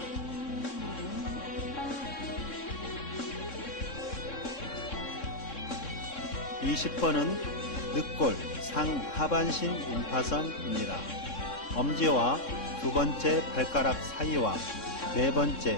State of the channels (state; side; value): late; right; 3.6 ms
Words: (20번은) 늑골 상하반신 임파선입니다. 엄지와 두 번째 발가락 사이와 네